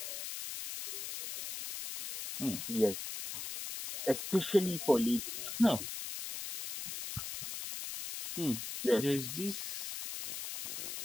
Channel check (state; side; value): noise; left; hiss, 6 dB below the sound